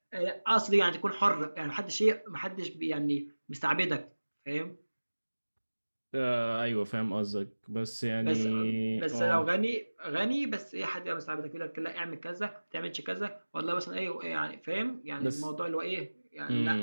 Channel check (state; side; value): inverted; both; correlation -1.00